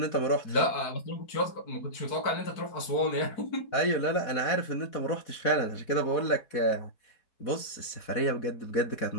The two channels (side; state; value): right; late; 4.1 ms